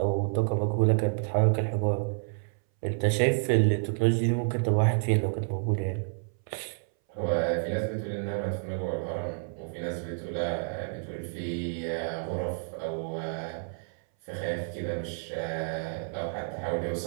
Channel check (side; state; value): left; silent; 58 dB below the other